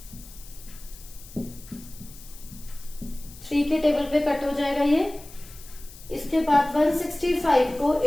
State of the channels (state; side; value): noise; left; hiss, 19 dB below the sound